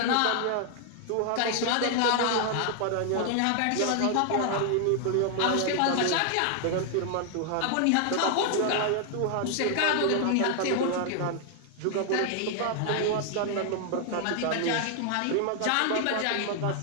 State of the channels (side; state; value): both; different; correlation 0.00